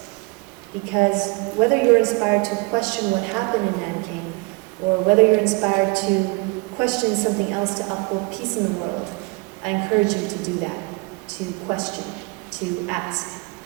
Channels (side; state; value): left; quieter; 27.7 dB